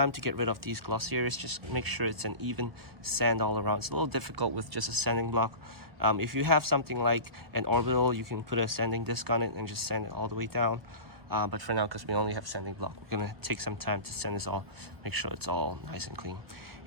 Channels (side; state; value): left; late; 1.1 ms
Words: to get rid of these glossy areas. Just make sure it's an even sand all around. It's a little difficult with just a sanding block. If you have something like an orbital, you can put a sanding disc on it and just sand it all the way down. But for now, because we only have sanding block, we're gonna take some time to sand this all, make sure it's all nice and clean.